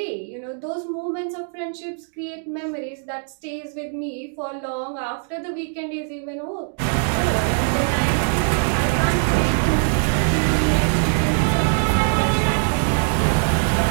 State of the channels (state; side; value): silent; left; 64 dB below the other